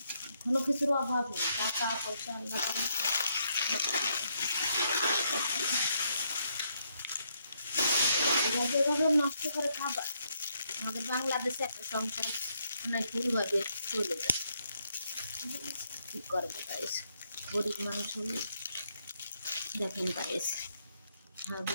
কোনো কিছুর অভাব নেই, টাকা পয়সা আল্লাহ যেভাবে নষ্ট করে খাবার। আমাদের বাংলাদেশে একটা সংসার অনেক ভুলভাবে চলে যায়। কি করবে গাইস, গরিব মানুষ হলে দেখেন গাইস।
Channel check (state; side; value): inverted; both; correlation -0.75